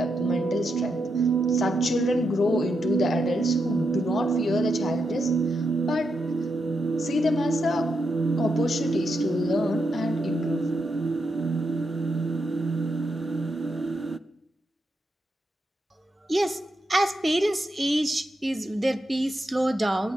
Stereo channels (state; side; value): normal; both; correlation 0.84